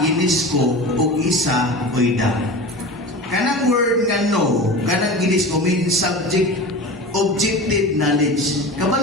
ug isa oida. Kanang word nga no, kanang ginisco means objective knowledge.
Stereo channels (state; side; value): normal; both; correlation 0.32